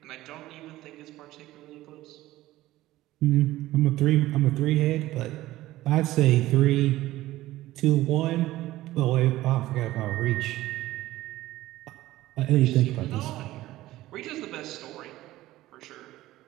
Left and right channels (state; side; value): quieter; left; 16.3 dB